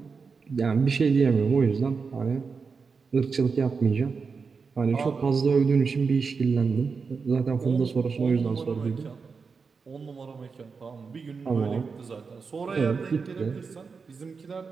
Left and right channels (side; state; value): left; quieter; 5.1 dB